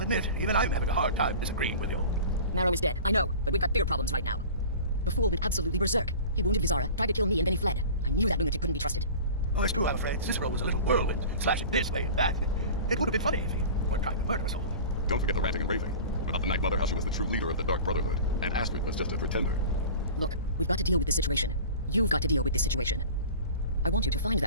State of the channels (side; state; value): both; inverted; correlation -0.38